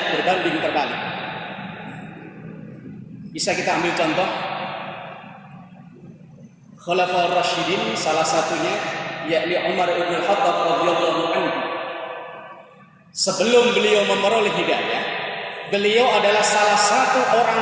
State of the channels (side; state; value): both; identical; correlation 1.00